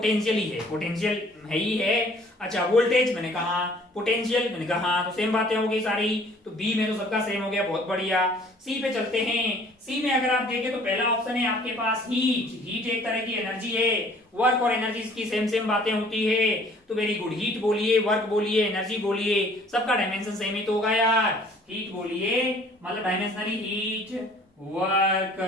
ही है, पोटेंशियल है ही है। अच्छा वोल्टेज मैंने कहा, पोटेंशियल मैंने कहा, तो सेम बातें हो गई सारी, तो बी में तो सबका सेम हो गया, बहुत बढ़िया। सी पे चलते हैं। सी में अगर आप देखें तो पहला ऑप्शन है आपके पास हीट। हीट एक तरह की एनर्जी है, वर्क और एनर्जी की सेम सेम बातें होती है, तो वेरी गुड। हीट बोलिए, वर्क बोलिए, एनर्जी बोलिए, सबका डायमेंशन सेम ही तो होगा यार। हीट बोलिए मतलब डायमेंशनली हीट,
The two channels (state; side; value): normal; both; correlation 0.55